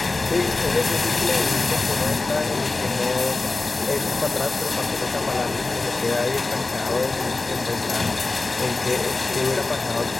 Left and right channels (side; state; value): right; quieter; 3.4 dB